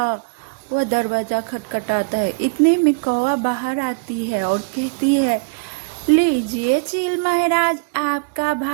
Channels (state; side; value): quieter; left; 33.2 dB